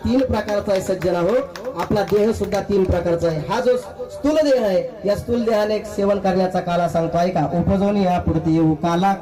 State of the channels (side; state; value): both; identical; correlation 1.00